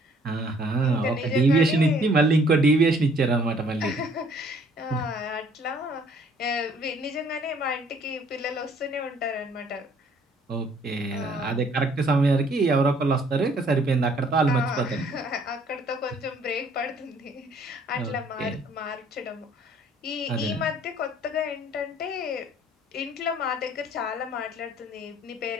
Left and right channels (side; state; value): both; normal; correlation 0.60